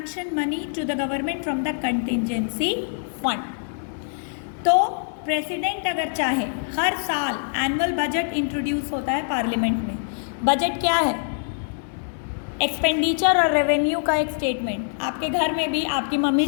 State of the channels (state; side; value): silent; right; 62 dB below the other